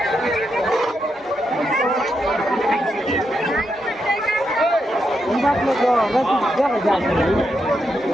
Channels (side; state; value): both; normal; correlation 0.83